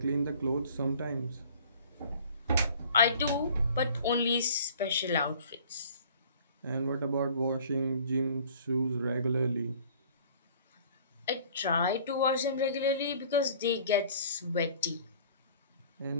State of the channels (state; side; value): inverted; both; correlation -0.51